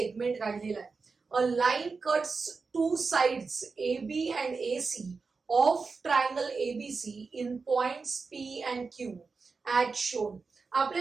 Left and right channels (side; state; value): left; quieter; 4.6 dB